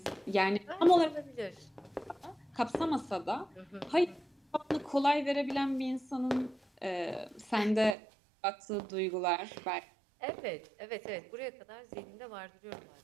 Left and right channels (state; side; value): drops out; left; at 8.0 s